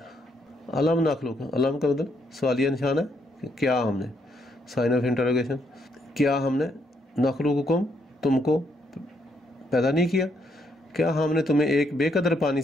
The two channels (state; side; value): normal; both; correlation 0.74